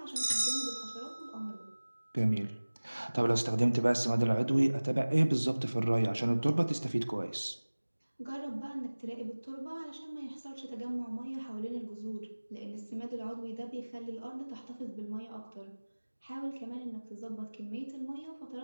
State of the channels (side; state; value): both; inverted; correlation -1.00